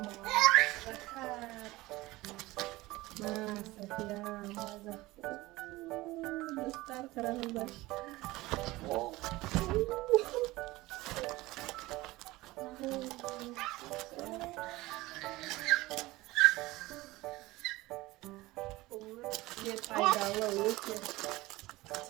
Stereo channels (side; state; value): left; quieter; 19.5 dB